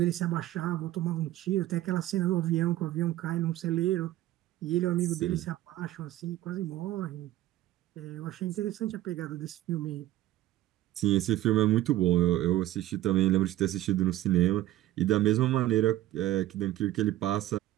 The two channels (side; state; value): left; quieter; 14.8 dB